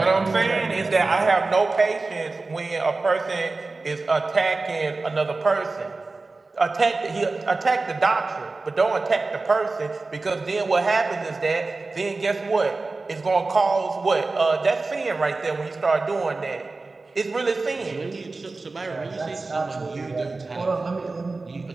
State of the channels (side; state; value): left; quieter; 3.6 dB